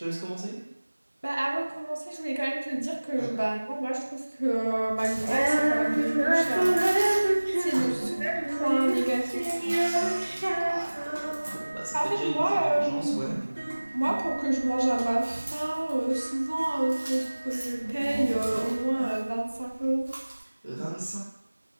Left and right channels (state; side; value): inverted; both; correlation -1.00